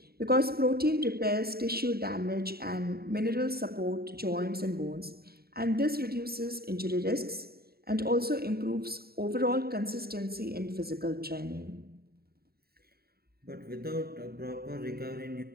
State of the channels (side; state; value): left; late; 0.45 ms